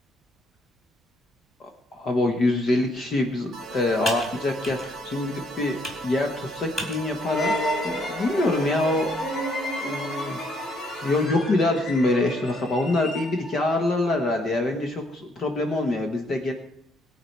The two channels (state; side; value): normal; both; correlation 0.69